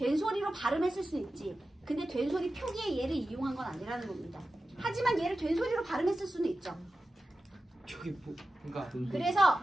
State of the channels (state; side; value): normal; both; correlation 0.94